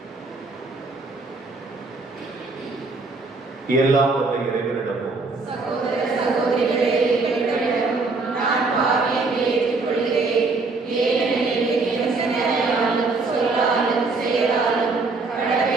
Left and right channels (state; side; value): quieter; left; 3.8 dB